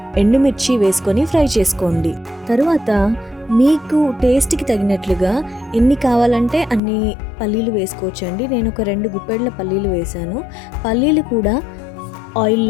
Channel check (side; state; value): right; drops out; at 6.8 s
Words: ఎండుమిర్చి వేసుకొని ఫ్రై చేసుకోండి. తర్వాత మీకు టేస్ట్కి తగినట్లుగా ఎన్ని కావాలంటే అన్ని పల్లీలు వేసుకోవచ్చండి. నేను ఒక 2 గుప్పెళ్ళ పల్లీలు వేశాను. పల్లీలు కూడా